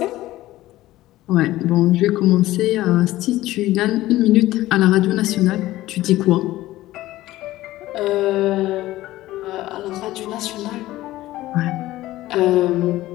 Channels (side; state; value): right; quieter; 16.2 dB